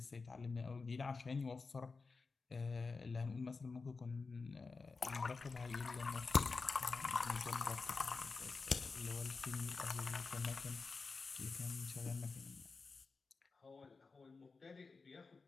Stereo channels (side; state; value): right; quieter; 4.3 dB